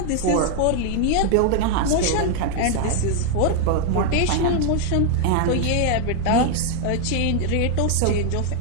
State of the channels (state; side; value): different; both; correlation 0.00